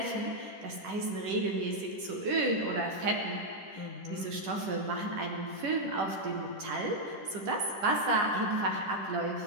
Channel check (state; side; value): late; left; 10 ms